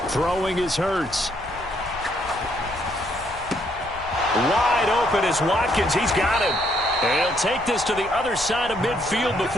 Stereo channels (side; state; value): left; noise; rumble, 16 dB below the sound